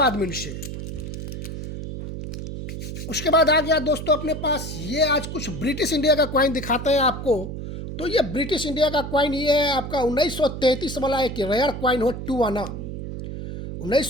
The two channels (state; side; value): noise; right; hum, 7 dB below the sound